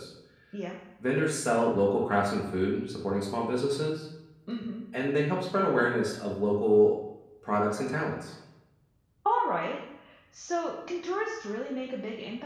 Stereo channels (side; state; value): both; identical; correlation 1.00